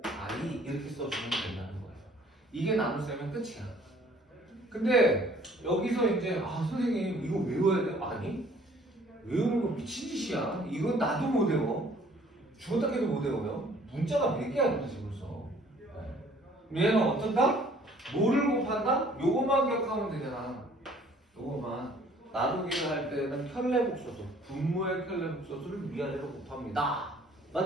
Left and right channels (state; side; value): normal; both; correlation 0.57